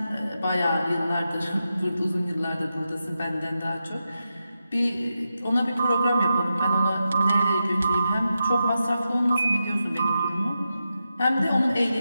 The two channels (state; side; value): inverted; both; correlation -0.89